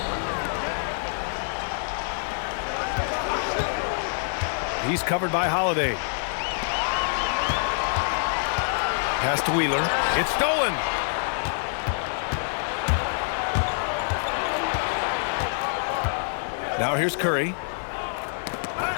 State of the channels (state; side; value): silent; right; 61 dB below the other